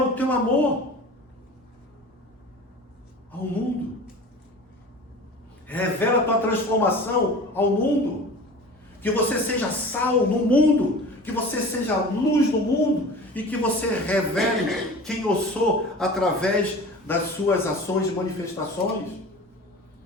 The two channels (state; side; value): normal; both; correlation 0.38